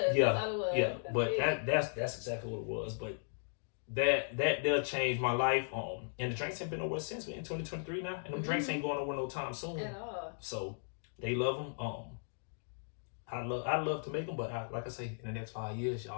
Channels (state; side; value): silent; right; digital silence